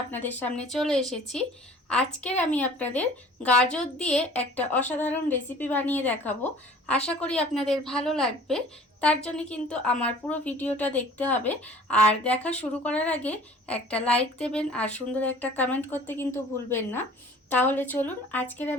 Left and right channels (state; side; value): normal; both; correlation 0.48